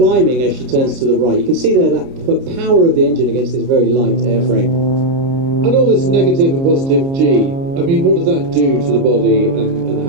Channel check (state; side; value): late; left; 30 ms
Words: as she turns to the right. You can see there that power of the engine against this very light airframe. And all this negative and positive G, I mean, what does that do to the body and